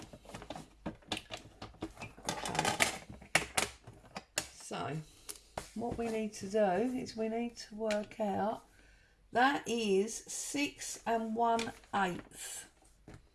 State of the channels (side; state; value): both; identical; correlation 1.00